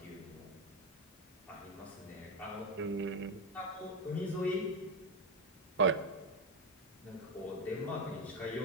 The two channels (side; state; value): both; normal; correlation 0.11